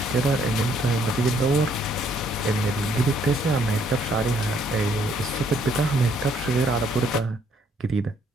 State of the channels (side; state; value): both; normal; correlation 0.67